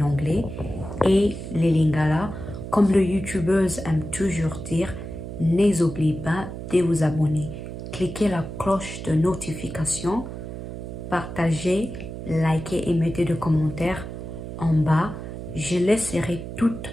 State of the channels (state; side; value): noise; right; hum, 9 dB below the sound